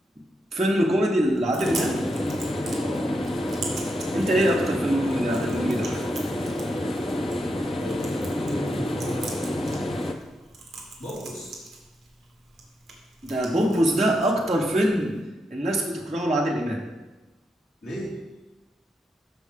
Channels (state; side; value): normal; both; correlation 0.83